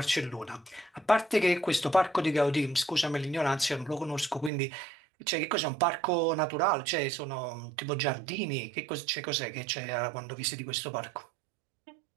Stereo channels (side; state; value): left; drops out; at 4.5 s